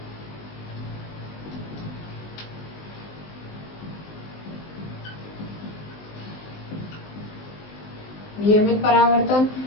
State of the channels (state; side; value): late; right; 19 ms